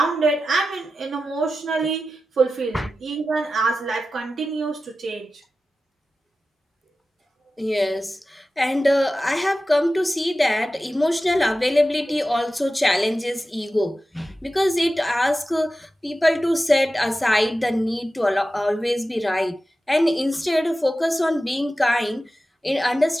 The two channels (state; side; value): normal; both; correlation 0.93